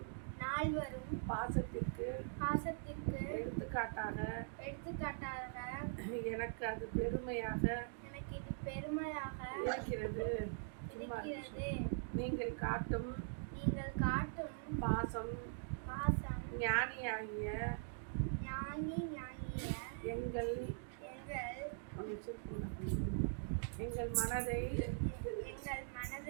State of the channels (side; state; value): left; silent; digital silence